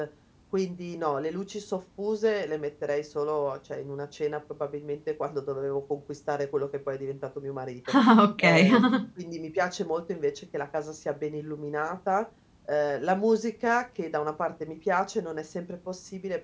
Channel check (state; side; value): identical; both; correlation 1.00